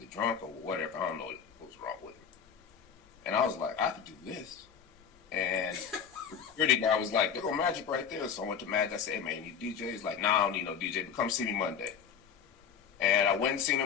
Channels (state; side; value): quieter; right; 7.3 dB